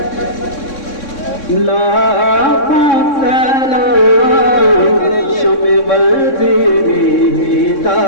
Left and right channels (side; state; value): right; late; 3.6 ms